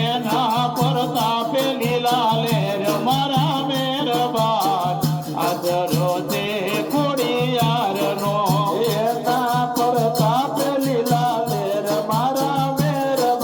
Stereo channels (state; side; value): identical; both; correlation 1.00